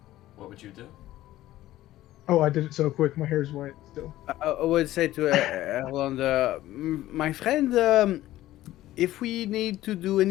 what would you do? Oh, I did it so quick. My hair's white still. I would say to Erland, my friend, if we need to do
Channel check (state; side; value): quieter; right; 15.1 dB